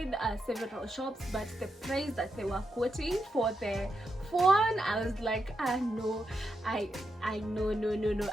several shops, but the price that they were quoting for the phone, I was like, no, I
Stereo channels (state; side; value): normal; both; correlation 0.84